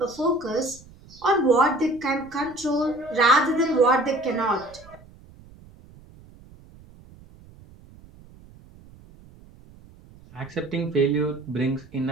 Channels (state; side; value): noise; right; rumble, 23 dB below the sound